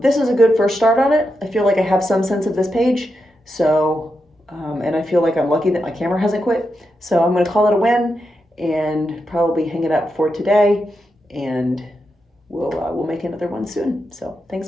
is a good first start on it. I feel like I have some sense of this page, so, and I feel like I'm lucky that my camera hasn't quit. So I'm going to call it a win and probably hang it up for today, and we'll make another one soon. So thanks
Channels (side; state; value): both; normal; correlation 0.86